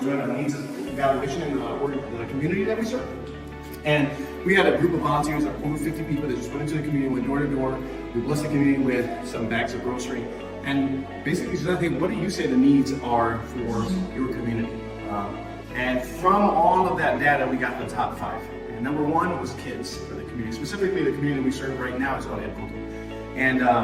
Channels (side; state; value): both; identical; correlation 1.00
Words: doing a needs evaluation in the community that we serve. And we had a group of volunteers, over 50 people that just went into the community, went door to door. We blessed the community with some bags of grocery. And basically said, hey, what do you say the needs are for your community? And from all of that data, we got the top 5. And number 1 was kids for the community. Specifically, the community we serve right now is called Ed Punto. And